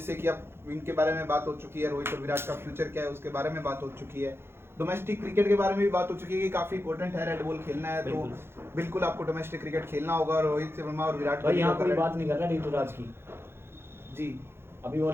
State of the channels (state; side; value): late; left; 0.12 ms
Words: कि अब इनके बारे में बात हो चुकी है, रोहित और विराट का फ्यूचर क्या है उसके बारे में बात हो चुकी है, डोमेस्टिक क्रिकेट के बारे में भी बात हो चुकी है कि काफी इंपॉर्टेंट है रेड बॉल खेलना है, तो बिल्कुल आपको डोमेस्टिक क्रिकेट खेलना होगा। रोहित शर्मा और विराट भाई यहाँ कोई कोहली बात नहीं कर रहा ऋतुराज की, जी, अभी वो